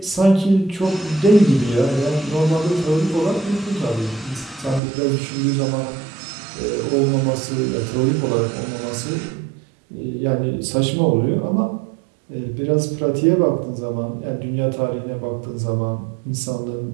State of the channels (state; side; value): drops out; left; at 4.8 s